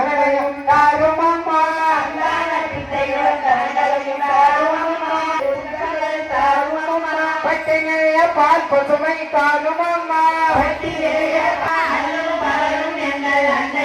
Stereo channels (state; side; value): identical; both; correlation 1.00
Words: தாருமம்மா, பட்டினைய பால் பசுமை தாருமம்மா,